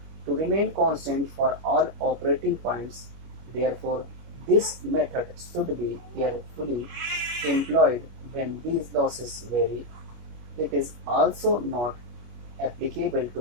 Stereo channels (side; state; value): left; late; 25 ms